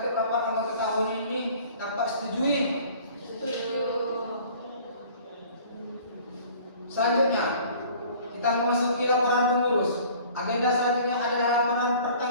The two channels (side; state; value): both; inverted; correlation -0.50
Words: rapat anggota tahun ini dapat setujui? Setuju. Selanjutnya, kita memasuki laporan pengurus. Agenda selanjutnya adalah laporan